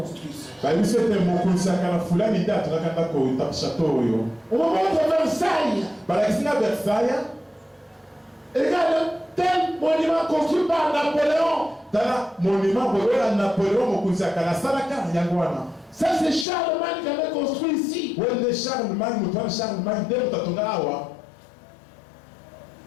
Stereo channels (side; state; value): right; drops out; at 16.4 s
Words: ça. On me montre Versailles. Et regarde, tel monument construit par Napoléon. Ça c'est Charlemagne qui avait construit ici.